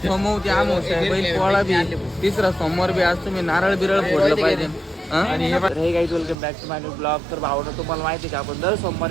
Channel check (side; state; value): left; drops out; at 6.4 s